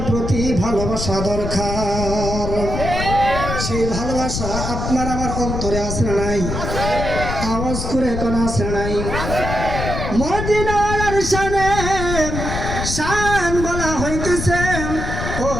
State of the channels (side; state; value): left; noise; rumble, 4 dB below the sound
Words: প্রতি ভালোবাসা দরকার। সেই ভালোবাসা আপনার আমার অন্তরে আছে না নাই? আওয়াজ করে কোন আছে নাই? মদিনাওয়ালার শান বলা হইতেছে। ও